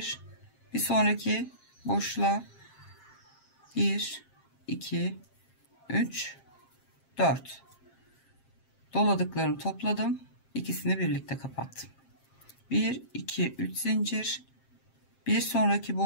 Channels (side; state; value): right; late; 7.5 ms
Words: bir sonraki boşluğa 1 2 3 4 doladıklarımı topladım. İkisini birlikte kapattım. 1 2 3 zincir, bir sonraki